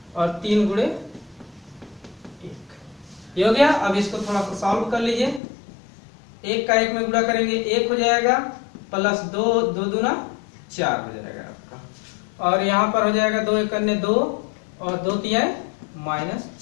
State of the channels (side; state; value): right; drops out; at 5.4 s